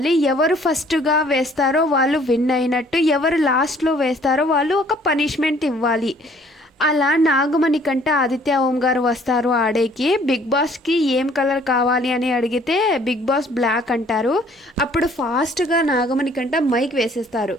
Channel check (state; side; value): normal; both; correlation 0.58